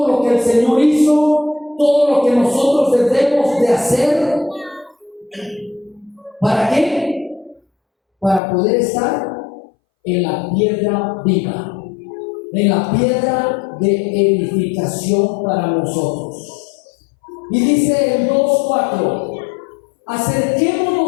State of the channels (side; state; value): right; drops out; at 8.4 s